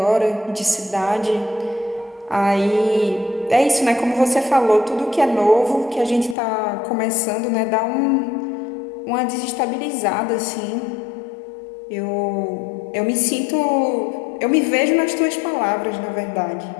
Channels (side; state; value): right; drops out; at 6.4 s